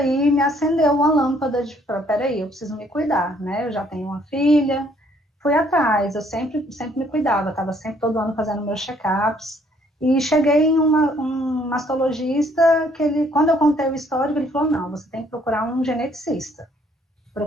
me acendeu uma lâmpada de, peraí, eu preciso me cuidar, né, eu já tenho uma filha, fui atrás, eu sempre me cuidava, estava sempre todo ano fazendo meus check-ups, e cheguei em um mastologista, que ele, quando eu contei o histórico, ele falou, não, você tem que procurar um geneticista.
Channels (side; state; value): both; normal; correlation 0.64